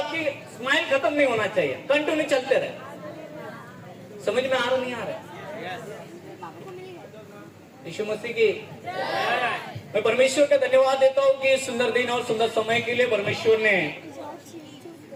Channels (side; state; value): both; identical; correlation 1.00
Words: स्माइल खत्म नहीं होना चाहिए, कंटिन्यू चलते रहे। समझ में आ रहा नहीं आ रहा? यीशु मसीह की मैं परमेश्वर का धन्यवाद देता हूँ कि सुंदर दिन और सुंदर समय के लिए परमेश्वर ने